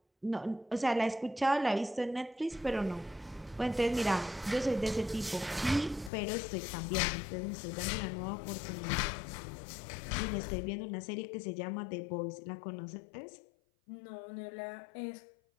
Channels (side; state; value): right; drops out; at 6.1 s